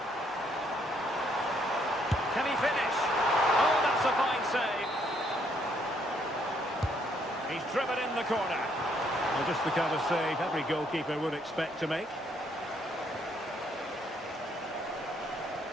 Can he finish? Oh, that's a fine save. He's driven in the corner. Well, just the kind of save every goalkeeper would expect to make.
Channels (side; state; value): both; normal; correlation 0.70